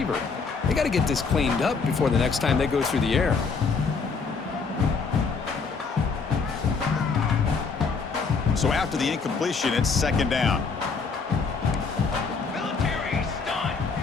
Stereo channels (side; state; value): right; quieter; 4.9 dB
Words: They got to get this cleaned up before the next time they go through the air. So after the incompletion, it's second down. Military stunt.